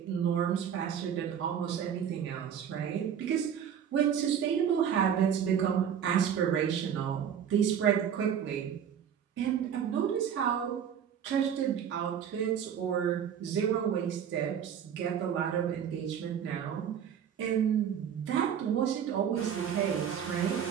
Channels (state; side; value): quieter; left; 8.5 dB